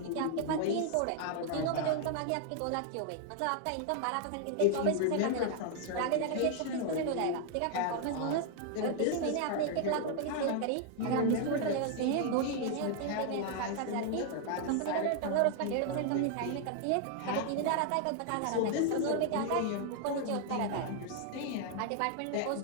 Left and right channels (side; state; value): both; different; correlation 0.00